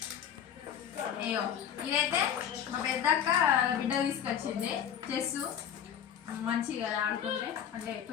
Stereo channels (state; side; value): quieter; right; 9.0 dB